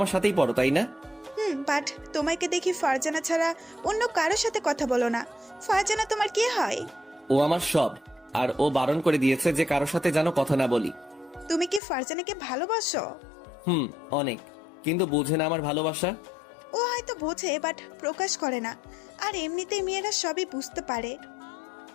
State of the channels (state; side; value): drops out; right; at 11.8 s